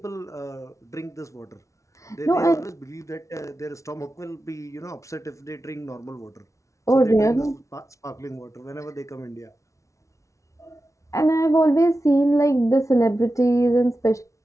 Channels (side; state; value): right; late; 0.15 ms